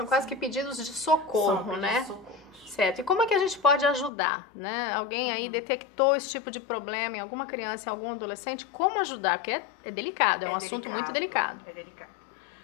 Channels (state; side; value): drops out; right; at 4.1 s